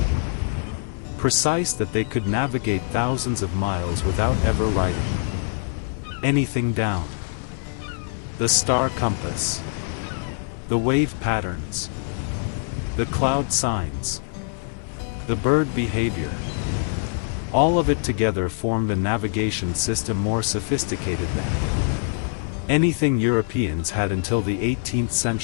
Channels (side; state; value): right; silent; 63 dB below the other